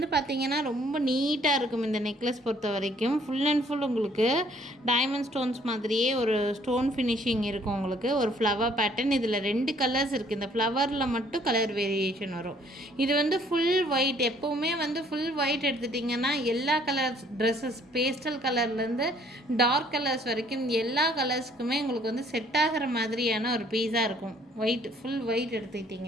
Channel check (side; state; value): both; normal; correlation 0.61